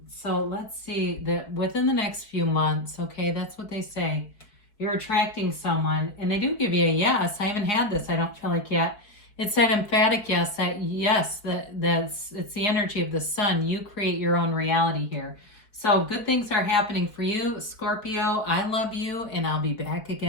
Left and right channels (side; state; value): right; late; 4.6 ms